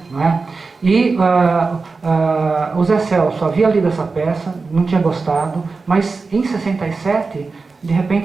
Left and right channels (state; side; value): quieter; left; 4.2 dB